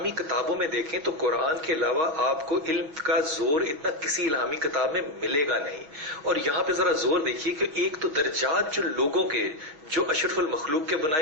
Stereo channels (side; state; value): left; late; 6.4 ms